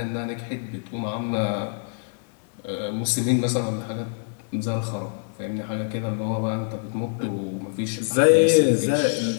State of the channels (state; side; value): silent; right; digital silence